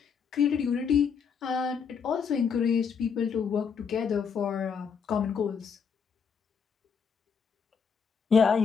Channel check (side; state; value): right; quieter; 6.4 dB